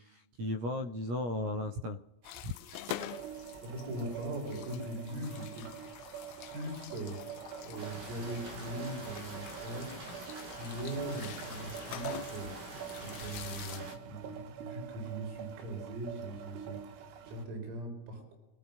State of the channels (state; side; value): late; left; 17 ms